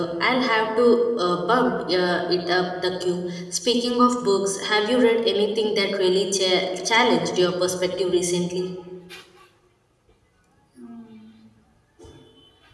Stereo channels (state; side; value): identical; both; correlation 1.00